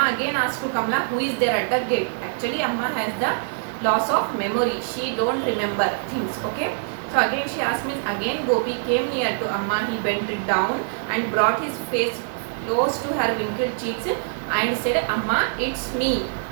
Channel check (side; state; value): left; silent; digital silence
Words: again asked to Kamala, who is there at the gate. Actually, Amma has the loss of memory. She don't remember things. Okay. So again she asked me, again Gopi came near to Amma. He bent down and brought his face close to her wrinkled cheeks and said, Amma, it's me,